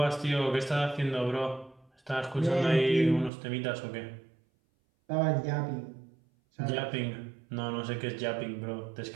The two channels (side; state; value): left; drops out; at 3.3 s